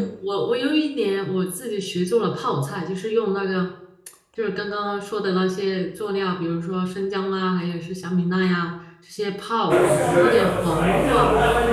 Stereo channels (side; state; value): both; identical; correlation 1.00